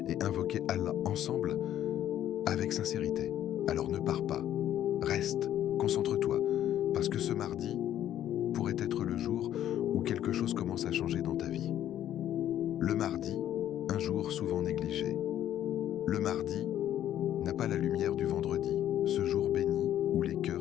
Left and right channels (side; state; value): right; quieter; 11.5 dB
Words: et invoquer Allah ensemble avec sincérité. Alors ne pars pas, reste, concentre-toi, parce que ce mardi pourrait être le jour où quelque chose commence à changer dans ta vie. Le mardi, un jour souvent négligé. Le mardi n'a pas la lumière du vendredi, ce jour béni où les